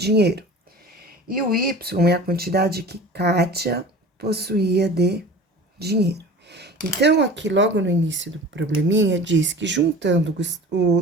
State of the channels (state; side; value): normal; both; correlation 0.39